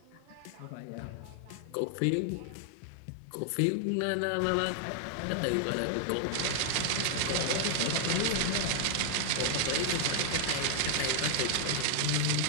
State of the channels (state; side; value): different; both; correlation 0.00